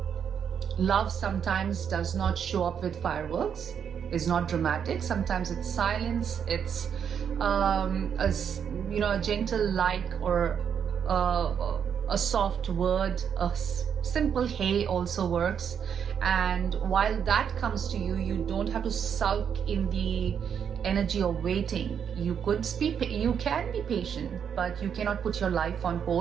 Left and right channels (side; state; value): left; quieter; 7.8 dB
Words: love sometimes does not show up with fireworks. It's not dramatic. Sometimes it's silence. It's a gentle like, or a soft word. A simple hey also works. And while that comes to you, you don't have to sulk in the energy of waiting. You can be patient, but you cannot put your life on